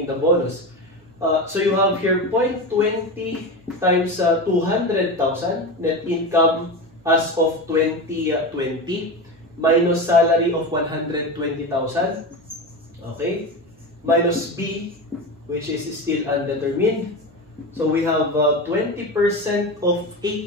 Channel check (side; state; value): both; normal; correlation 0.22